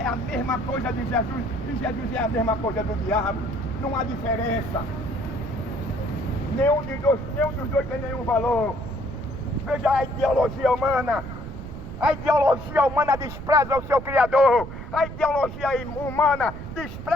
a mesma coisa de Jesus e Jesus é a mesma coisa do diabo. Não há diferença. Nenhum dos dois tem nenhum valor. Veja a ideologia humana. A ideologia humana despreza o seu Criador. A ideologia humana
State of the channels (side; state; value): right; noise; rumble, 10 dB below the sound